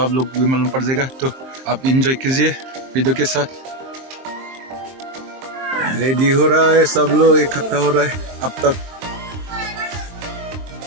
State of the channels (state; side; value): late; left; 23 ms